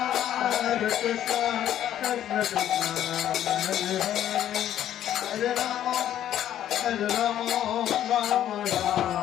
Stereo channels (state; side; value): quieter; right; 11.3 dB